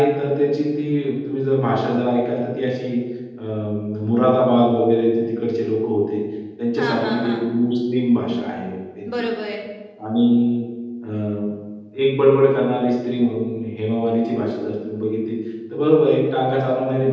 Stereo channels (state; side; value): identical; both; correlation 1.00